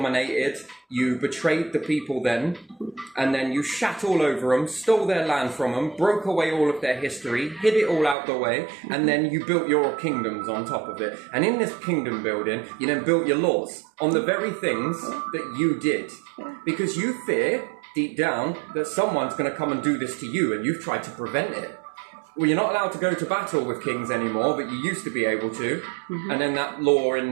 you betrayed the people then, and then you shat all over them, stole their land from them, broke away all of their history, hid it all out the way, and then you built your kingdoms on top of it. And in this kingdom building, you then built your laws on the very things that you did. Because you fear, deep down, that someone's going to come and do this to you, and you've tried to prevent it. Well, you're not allowed to go to battle with kings anymore, but you used to be able to. And then that law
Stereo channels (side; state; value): left; drops out; at 8.2 s